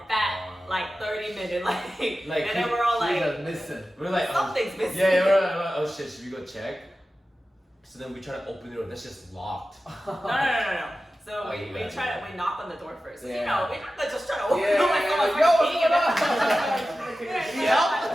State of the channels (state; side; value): normal; both; correlation 0.94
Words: fat, like 30-minute, like, and then we're all like, we're like, something's missing. Yeah, we're like, oh shit, should we go check? So then we try to open the door, that's just locked. No. So we knock on the door first. Yeah. You know, we're not just trying to open the door like someone's peeing in it.